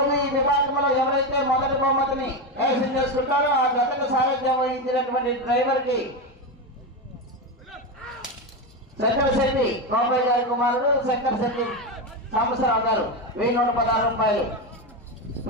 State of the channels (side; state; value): both; normal; correlation 0.14